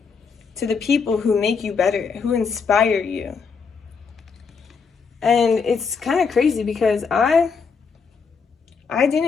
to the people who make you better, who inspire you. And it's kind of crazy because I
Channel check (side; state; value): right; quieter; 5.4 dB